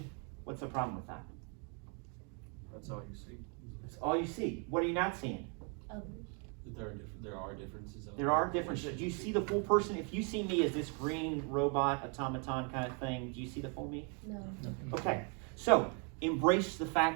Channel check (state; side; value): quieter; left; 37.1 dB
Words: What's the problem with that? That's all you see. That's all you see. What are you not seeing? There are differences. There are differences. Do you see the full person? If you see me as this green robot, automaton kind of thing, do you see the full me? No. Okay. So embrace the